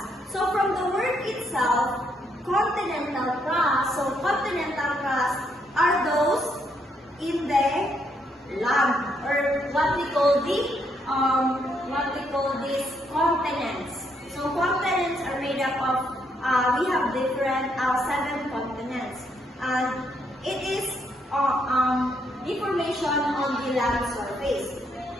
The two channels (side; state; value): both; normal; correlation 0.74